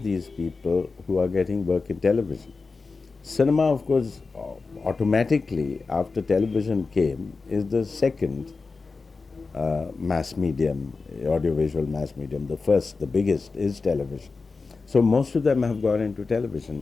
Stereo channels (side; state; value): right; quieter; 4.2 dB